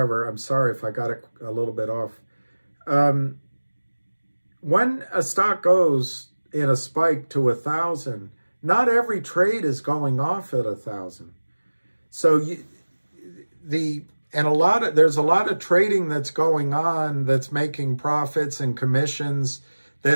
I'm sorry if I got it a little bit off. When a stock goes in a spike to 1,000, not every trade is going off at 1,000. So there's a lot of trading that's going on that's making profits and commissions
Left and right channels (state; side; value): inverted; both; correlation -1.00